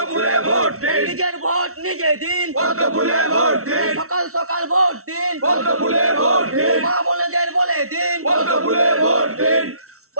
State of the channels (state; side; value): late; left; 0.63 ms